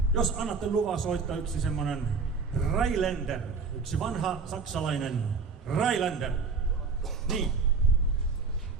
jos annatte luvan soittaa yksi semmonen Rheinländer, yksi vanha saksalainen Rheinländer, niin.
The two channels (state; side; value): quieter; left; 4.8 dB